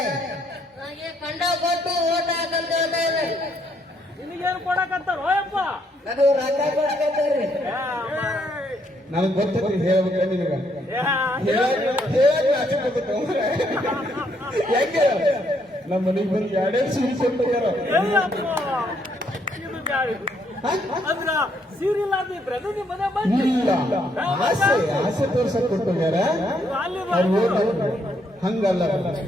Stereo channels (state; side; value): normal; both; correlation 0.72